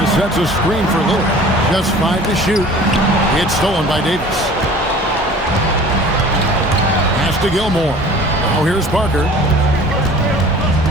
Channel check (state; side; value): normal; both; correlation 0.45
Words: sets a screen for Lillard. Just 5 to shoot. It's stolen by Davis. Pass to Gilmore. Now here's Parker.